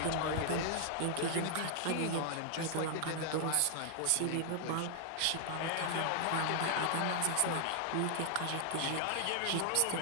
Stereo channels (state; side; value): different; both; correlation 0.00